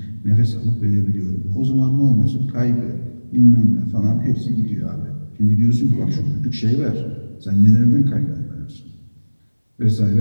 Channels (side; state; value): both; inverted; correlation -1.00